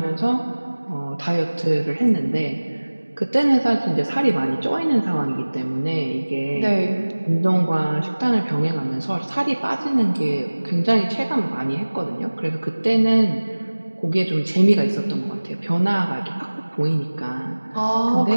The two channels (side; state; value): both; inverted; correlation -1.00